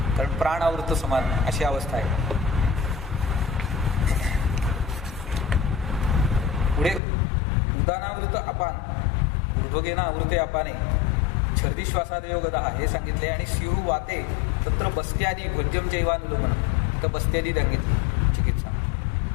कारण प्राणावृत समान अशी अवस्था आहे. पुढे उदानावृत अपान, ऊर्ध्वगेना आवृते अपाने छर्दी श्वासादयो गदा हे सांगितले. आणि स्युः वाते तत्र बस्त्यादी भोज्यम जैवानुलोमन, तर बस्त्यादी सांगितली चिकित्सा.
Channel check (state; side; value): drops out; right; at 7.0 s